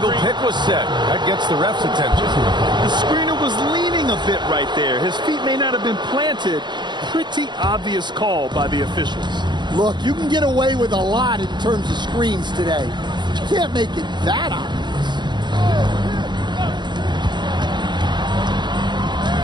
pick was set. That gets the ref's attention. The screener was leaning a bit right there. His feet may not have been planted. Pretty obvious call by the officials. Look, you can get away with a lot in terms of screens today. But you can't make it that obvious.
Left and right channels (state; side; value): late; left; 0.22 ms